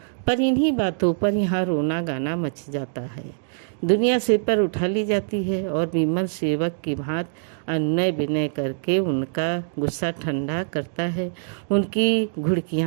पर इन्हीं बातों पर यहाँ रोना गाना मच जाता है। दुनिया सिर पर उठा ली जाती है और विमल सेवक की भांति अनुनय विनय करके उनका गुस्सा ठंडा करता है, उनकी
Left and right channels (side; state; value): left; silent; digital silence